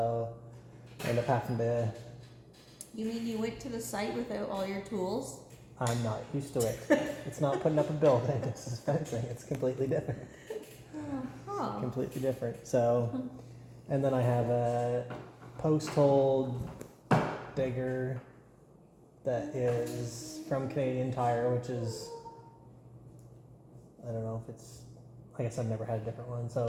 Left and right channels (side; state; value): both; identical; correlation 1.00